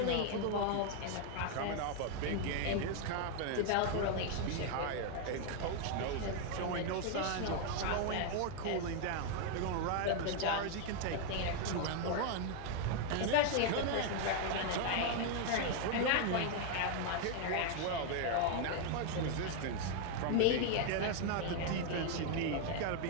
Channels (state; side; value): different; both; correlation 0.01